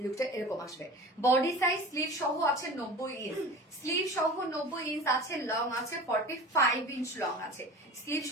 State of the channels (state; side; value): normal; both; correlation 0.36